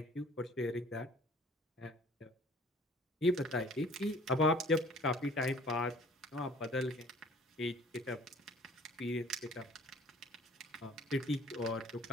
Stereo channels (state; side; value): normal; both; correlation 0.52